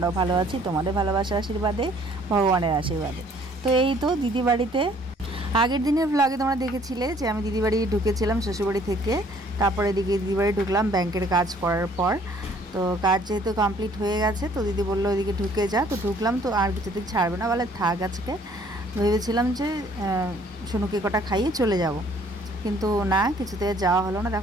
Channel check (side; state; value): both; normal; correlation 0.59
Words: ভালো আছি তোমাদের ভালোবাসার আশীর্বাদে, ভগবানের আশীর্বাদে। তো এই তো দিদি বাড়িতে আগের দিনের ভ্লগে তোমরা দেখেছিলে যে আমি দিদি বাড়ি ঢুকেছিলাম শ্বশুরবাড়ি থেকে। তারপরে এদিকে দিদি বাড়ি ঢুকলাম ব্যাংকের কাজ করার পর। তো কাজ যেহেতু কমপ্লিট হয়ে গেছে তো দিদি বললো ওইদিকে ঢুকে যা। তো ঢুকলাম, তো আর কিছুদিন ছাড়বে না বলে থাক আজকে। ভেবেছিলাম যে সোনুকে কটা খাইয়ে চলে যাব, কিন্তু না, কিছুতে যাওয়া হলো না।